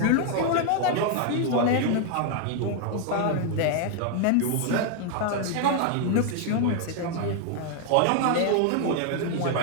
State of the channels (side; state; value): both; different; correlation 0.00